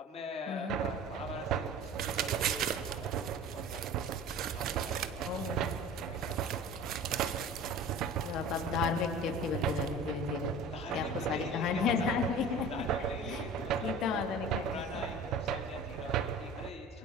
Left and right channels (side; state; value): both; normal; correlation 0.40